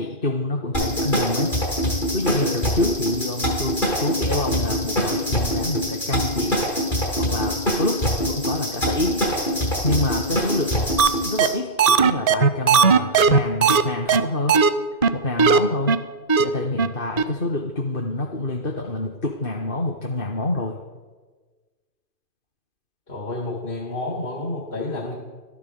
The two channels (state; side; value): late; right; 2.5 ms